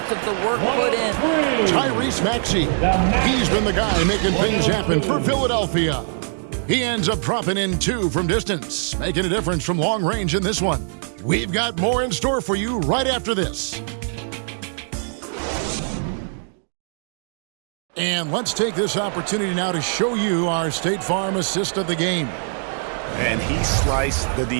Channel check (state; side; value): silent; left; 64 dB below the other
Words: of the work put in. Tyrese Maxey. He's been the guy making things happen for Philadelphia. He ends up dropping in 2 from distance, making a difference from long range in this one. We've got more in store for you right after this. And let's take this opportunity now to show you our State Farm assist of the game. And he sliced the